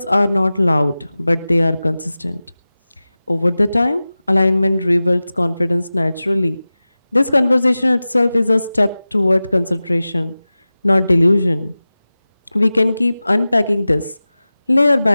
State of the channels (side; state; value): both; inverted; correlation -0.96